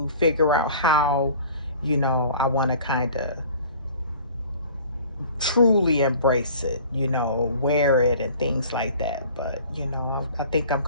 figure out how, I want to kind of truly embrace it, wear it and things like that. But, I think I'm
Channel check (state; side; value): inverted; both; correlation -0.47